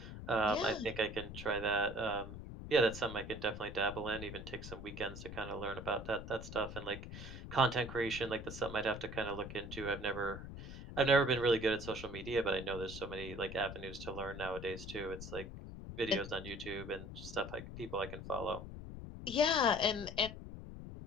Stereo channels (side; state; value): left; noise; rumble, 10 dB below the sound